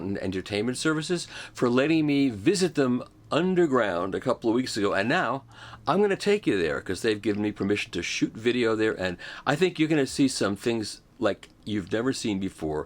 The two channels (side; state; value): both; identical; correlation 1.00